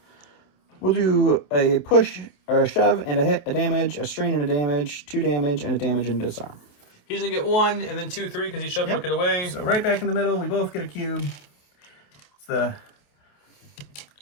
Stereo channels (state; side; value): late; right; 28 ms